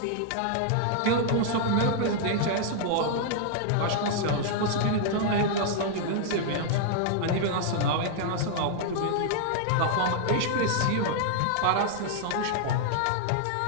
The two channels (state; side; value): different; both; correlation -0.01